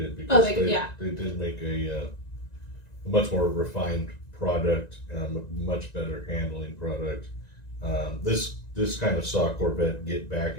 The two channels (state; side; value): late; right; 1.9 ms